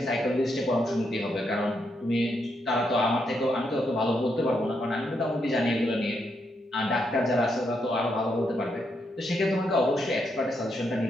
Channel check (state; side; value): normal; both; correlation 0.80